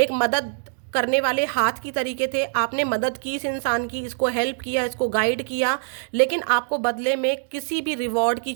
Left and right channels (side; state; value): left; silent; digital silence